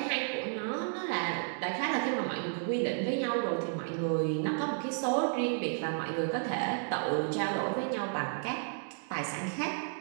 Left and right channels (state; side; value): silent; left; 56 dB below the other